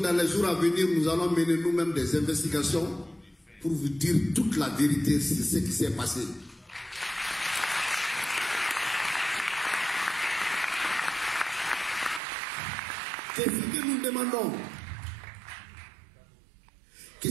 les jours à venir, nous allons mener nous-mêmes des investigations pour vous dire toute la vérité sur ce qui s'est passé. Qu'est-ce que nous demandons?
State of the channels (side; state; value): left; drops out; at 12.2 s